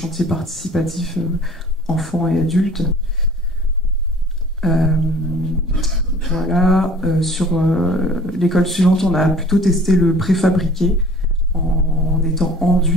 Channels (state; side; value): normal; both; correlation 0.48